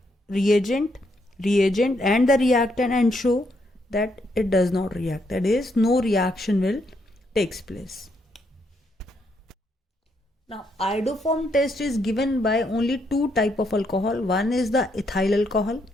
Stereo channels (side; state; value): both; normal; correlation 0.76